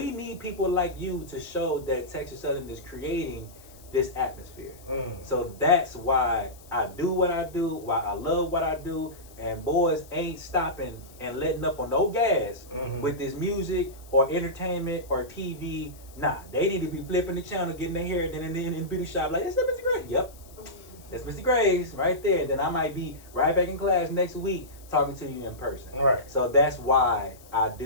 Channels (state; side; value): noise; left; hiss, 23 dB below the sound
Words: need people like you to show that Texas Southern is creating this atmosphere. So that's why I do what I do, why I love what I do, and boys ain't stopping and letting up on no gas with this music or entertainment or TV. Nah, they need to be flipping the channel, getting their hair, then in the beauty shop like, is that Mr. Gray? Yep. That's Mr. Graves right there. Then I might be right back in class next week talking to you in person. Right. So that's why I